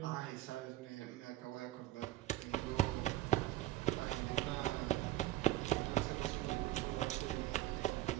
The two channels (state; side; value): quieter; left; 15.2 dB